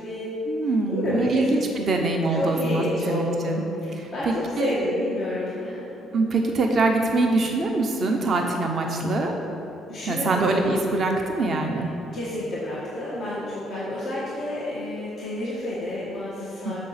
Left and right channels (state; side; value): normal; both; correlation 0.69